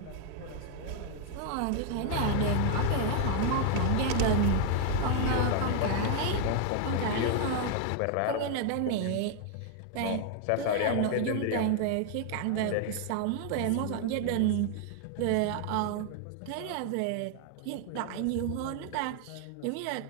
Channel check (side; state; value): both; different; correlation 0.00